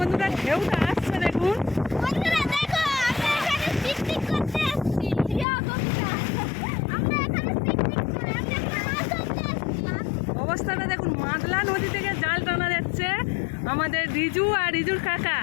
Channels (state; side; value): drops out; right; at 5.5 s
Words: ঢেউটা আসছে। দেখুন বন্ধুরা দেখো আমরা এখানে পিকনিক করতে আসছি। ইয়া বন্ধুরা আমরা এখানে পিকনিক করে আমরা মাছ ধরতে আসছি। অবস্থাটা দেখুন, মাদলা নদী থেকে জাল টানা যাচ্ছে আমাদের রিজু আর রিজুর কাকা